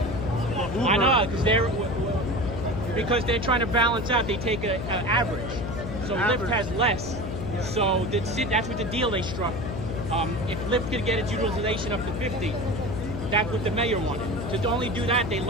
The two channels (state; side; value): noise; left; hum, 6 dB below the sound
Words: I know, because they're trying to balance out. They take an average, so Lyft has less. Yeah. So that's what the deal they struck. If Lyft could get its utilization up to 50, that's what the mayor wanted. To only do that, they